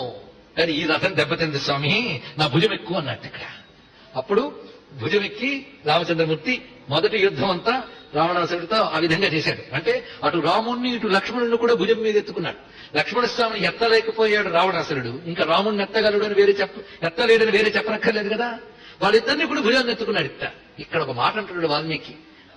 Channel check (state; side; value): identical; both; correlation 1.00